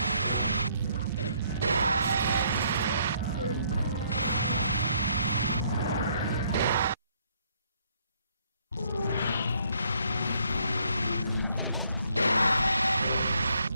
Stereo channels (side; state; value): both; inverted; correlation -0.68